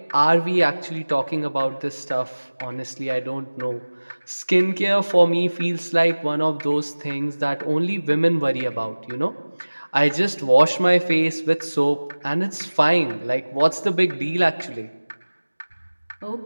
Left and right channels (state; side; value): inverted; both; correlation -1.00